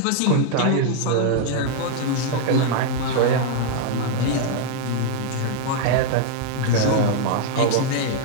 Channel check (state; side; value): different; both; correlation 0.00